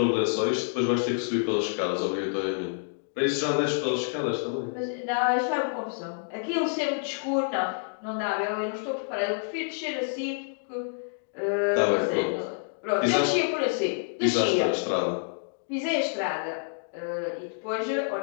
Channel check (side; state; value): right; silent; digital silence